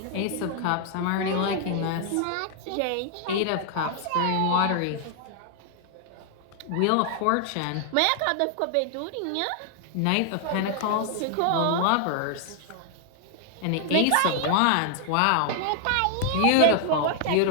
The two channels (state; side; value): different; both; correlation 0.00